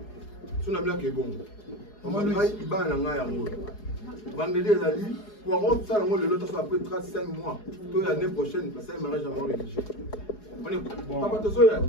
On a bien que bon. On va dire qu'il va en avoir un mot. Vendredi, il a dit, pour avoir ça, le temps après 35 mois, toute l'année prochaine, parce que ça, il m'arrête jamais rédigé. On est bon. Papa, tu sais,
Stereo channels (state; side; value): late; right; 4.8 ms